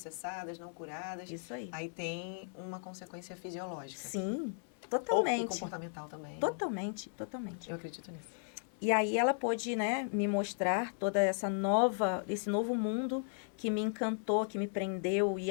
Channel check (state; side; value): silent; right; 54 dB below the other